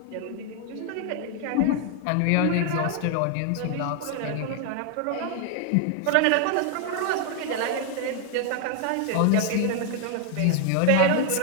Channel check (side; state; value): both; different; correlation 0.00